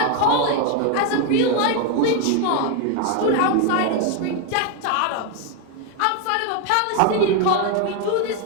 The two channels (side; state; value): both; different; correlation 0.01